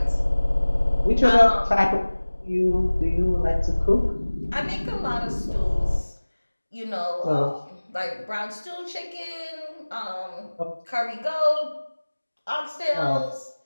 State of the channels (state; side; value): inverted; both; correlation -1.00